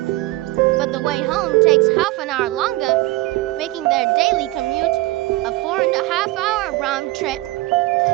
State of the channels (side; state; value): left; quieter; 19.3 dB